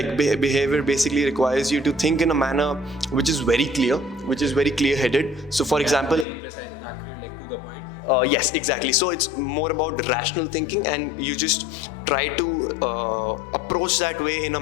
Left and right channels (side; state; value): right; drops out; at 6.2 s